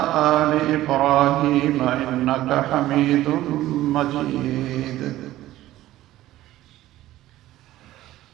آل إبراهيم إنك حميد مجيد.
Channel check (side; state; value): left; quieter; 15.1 dB